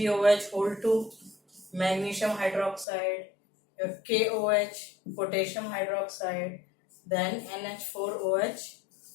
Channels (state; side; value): drops out; right; at 2.9 s